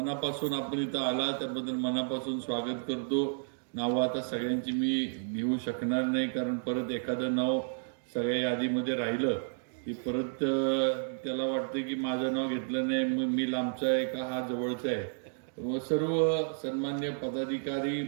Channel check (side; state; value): left; silent; digital silence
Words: आपण इथं आला त्याबद्दल मनापासून स्वागत करतो. नावं आता सगळ्यांची मी घेऊ शकणार नाही, कारण परत एखादं नाव सगळ्या यादीमध्ये राहिलं की परत त्याला वाटतं की माझं नाव घेतलं नाही, मग मी लांबचा आहे का हा जवळचा आहे. व सर्व सन्मान्य पदाधिकारी,